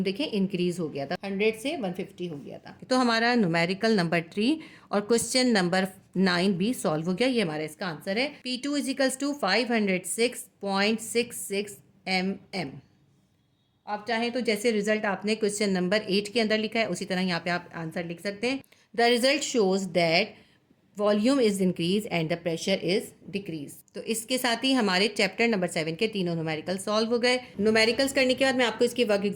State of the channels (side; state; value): both; identical; correlation 1.00